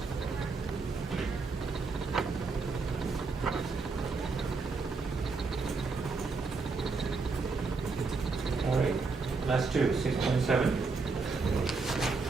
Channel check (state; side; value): quieter; left; 4.3 dB